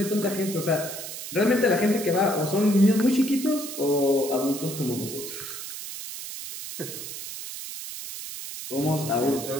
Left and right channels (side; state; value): right; noise; hiss, 9 dB below the sound